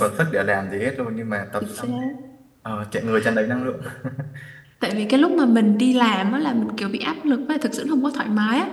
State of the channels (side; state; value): both; identical; correlation 1.00